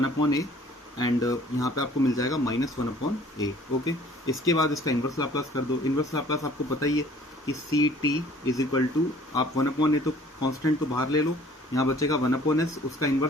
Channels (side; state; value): both; normal; correlation 0.54